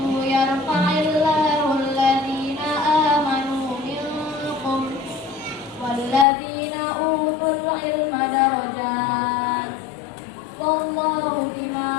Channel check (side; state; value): right; drops out; at 6.2 s